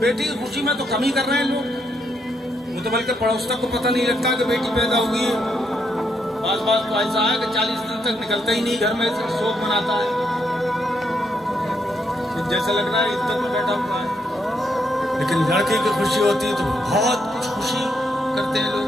کی خوشی میں تو کم ہی کر رہے ہیں لوگ، وہ تو بلکہ پڑوس تک کو پتہ نہیں لگتا کہ بیٹی پیدا ہوگی ہے، بعض تو ایسا ہے کہ 40 دن تک نکلتا ہی نہیں گھر میں، شوق مناتا ہے، جیسا لگ رہا ہے عدت میں بیٹھا ہوا ہے۔ لیکن لڑکے کی خوشی ہوتی ہے تو بہت کچھ خوشی کرتے ہیں لوگ،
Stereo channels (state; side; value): normal; both; correlation 0.77